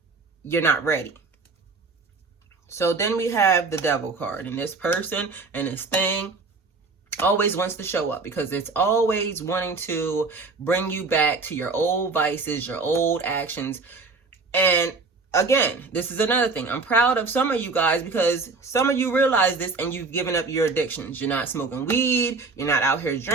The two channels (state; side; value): quieter; left; 4.0 dB